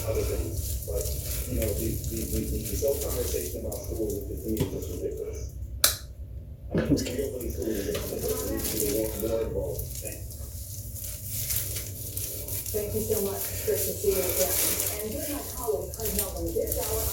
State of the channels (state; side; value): identical; both; correlation 1.00